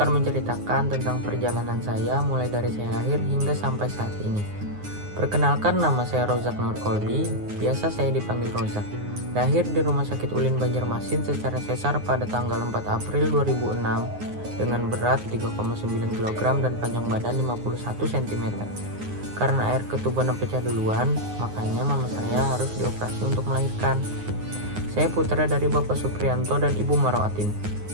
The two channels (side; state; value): left; late; 9.6 ms